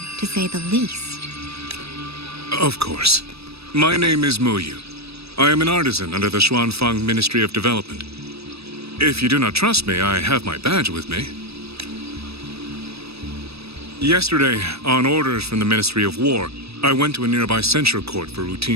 to say the least. Of course. My name is Muyu. I am an artisan under the Xuanfang Ministry of Development. If you do not trust me, I have my badge with me. Yesterday, on orders from the Ministry of War, I went to a nearby censure court for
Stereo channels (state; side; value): late; left; 0.78 ms